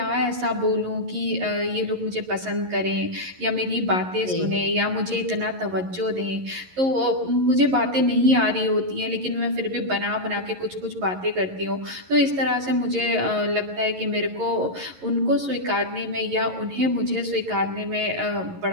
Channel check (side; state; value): left; late; 11 ms